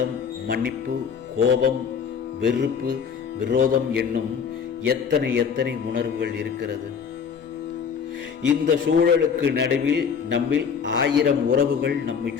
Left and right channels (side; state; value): right; quieter; 6.7 dB